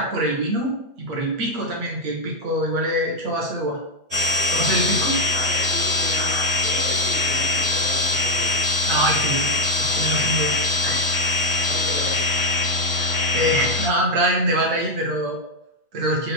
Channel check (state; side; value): late; left; 8.0 ms